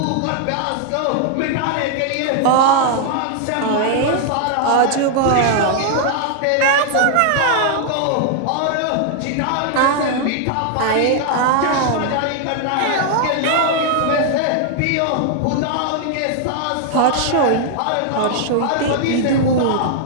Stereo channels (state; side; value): different; both; correlation 0.00